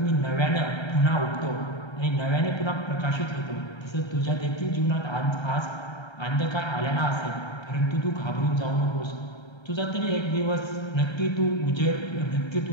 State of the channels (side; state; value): right; late; 1.3 ms